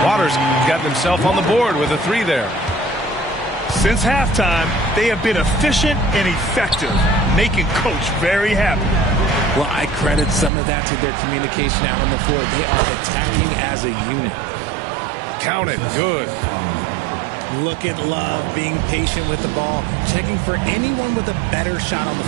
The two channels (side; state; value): left; drops out; at 10.5 s